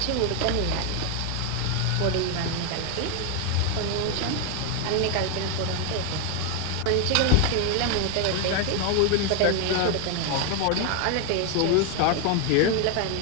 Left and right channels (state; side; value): different; both; correlation 0.01